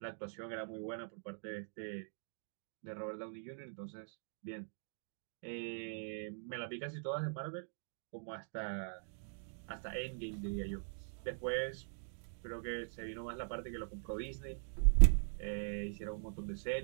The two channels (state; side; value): silent; left; digital silence